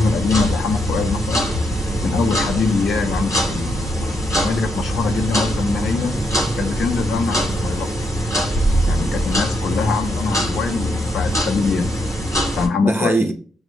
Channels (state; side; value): normal; both; correlation 0.78